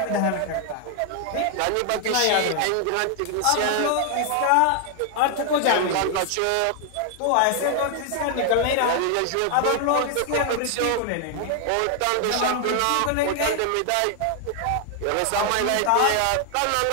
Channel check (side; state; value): both; different; correlation 0.00